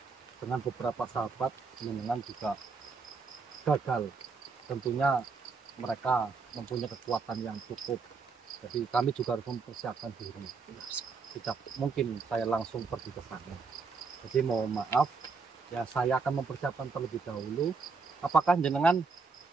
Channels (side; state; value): left; quieter; 4.7 dB